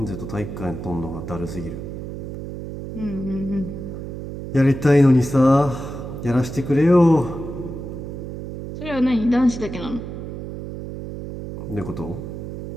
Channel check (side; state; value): right; noise; hum, 8 dB below the sound